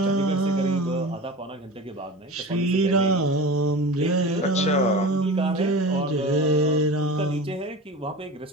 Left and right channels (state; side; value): normal; both; correlation 0.33